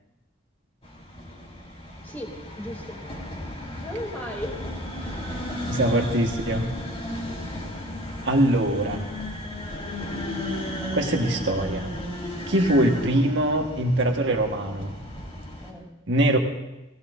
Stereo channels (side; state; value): both; normal; correlation 0.44